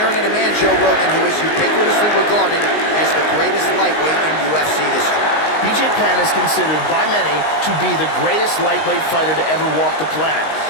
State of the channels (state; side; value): late; right; 19 ms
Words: at a man, Joe Rogan, who is ubiquitously regarded as the greatest lightweight in UFC history. BJ Penn is considered by many to be the greatest lightweight fighter to ever walk the planet.